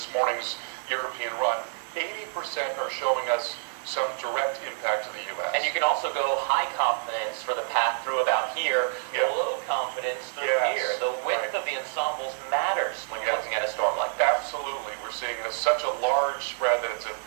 morning's European run. 80% are showing us some direct impact to the U.S. And you can also go high confidence for the path through about here, low confidence through here. The width of the ensembles matters when you're looking at a storm like that. Absolutely. We're seeing such a large spread that it's a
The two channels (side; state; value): left; silent; digital silence